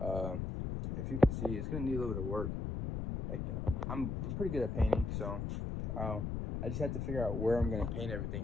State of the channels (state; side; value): noise; left; rumble, 2 dB below the sound